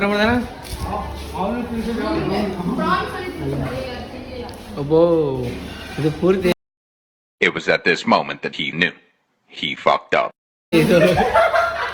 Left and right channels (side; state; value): both; identical; correlation 1.00